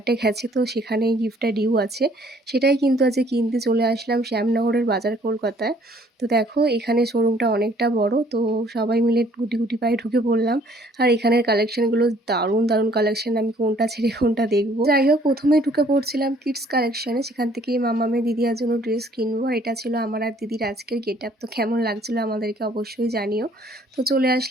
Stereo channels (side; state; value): both; normal; correlation 0.60